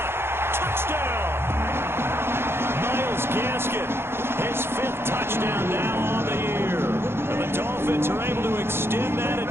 Touchdown! Myles Gaskin, his 5th touchdown now on the year. And the Dolphins are able to extend that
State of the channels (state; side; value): late; left; 0.11 ms